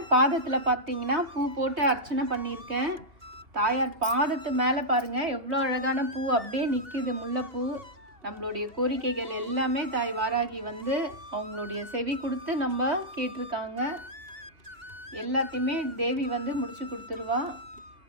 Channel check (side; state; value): left; late; 2.5 ms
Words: பாதத்தில் பார்த்தீங்கன்னா பூ போட்டு அர்ச்சனை பண்ணியிருக்கேன். தாயார் பாதத்து மேலே பாருங்கள் எவ்வளோ அழகான பூ அப்படியே நிற்கிது, முல்லைப்பூ. நம்மளுடைய கோரிக்கைகள் எல்லாமே தாய் வாராகி வந்து அவங்களுடைய செவி கொடுத்து நம்ம கேட்டிருக்காங்க. எல்லாத்தையுமே தேவி வந்து முடிச்சு கொடுத்துருவா.